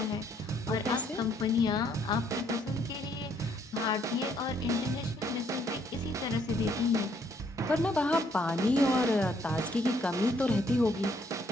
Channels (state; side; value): normal; both; correlation 0.68